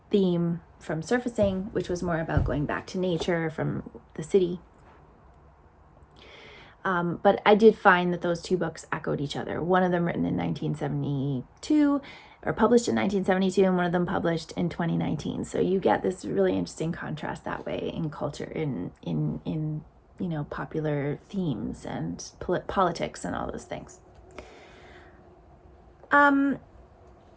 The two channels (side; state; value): both; identical; correlation 1.00